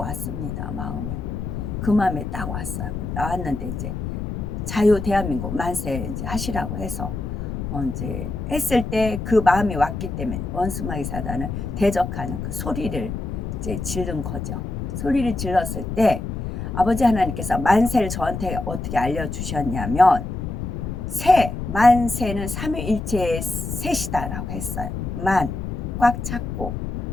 마음에. 그 마음에 딱 왔어요. 나왔는데 이제 자유 대한민국 만세 이제 하시라고 해서 이제 했을 때 그 마음이 왔기 때문에 원수마귀 사단을 대적하는 그 소리를 이제 지른 거죠. 소리를 질렀을 때 아버지 하나님께서 만세를 저한테 어떻게 알려주셨냐면 만세는 삼위일체의 셋이다라고 했어요. 꽉 찼고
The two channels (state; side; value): noise; left; rumble, 5 dB below the sound